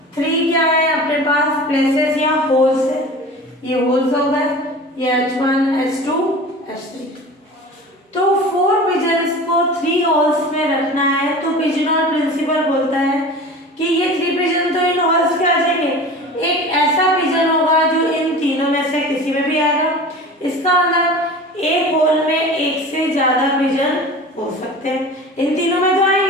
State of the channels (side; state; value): both; normal; correlation 0.37